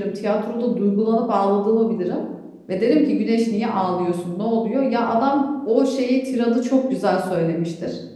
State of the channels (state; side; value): identical; both; correlation 1.00